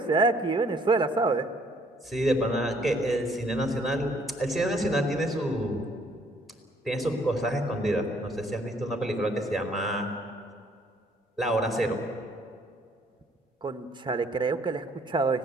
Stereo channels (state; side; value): normal; both; correlation 0.63